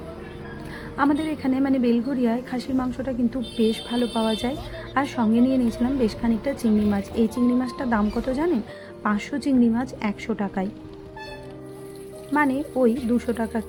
আমাদের এখানে মানে বেলঘরিয়ায় খাসির মাংসটা কিন্তু বেশ ভালো পাওয়া যায়। আর সঙ্গে নিয়ে নিয়েছিলাম বেশ খানিকটা চিংড়ি মাছ। এই চিংড়ি মাছটার দাম কত জানেন? 500 চিংড়ি মাছ 100 টাকায়, মানে ওই 200 টাকা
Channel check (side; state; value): both; identical; correlation 1.00